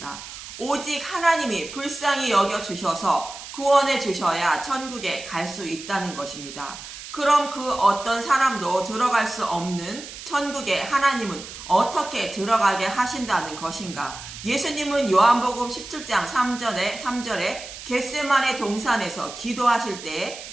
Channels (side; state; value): right; noise; hiss, 12 dB below the sound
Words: 오직 하나님이 불쌍히 여겨주셔서 구원해 주셔야 천국에 갈 수 있다는 것입니다. 그럼 그 어떤 사람도 들어갈 수 없는 천국에 하나님은 어떻게 들어가게 하신다는 것인가? 예수님은 요한복음 17장 3절에 겟세마네 동산에서 기도하실 때